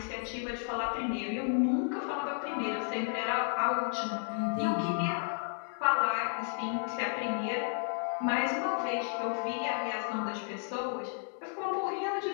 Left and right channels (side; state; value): right; silent; 56 dB below the other